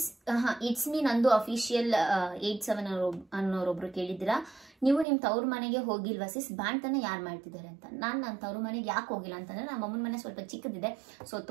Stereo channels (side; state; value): left; drops out; at 5.1 s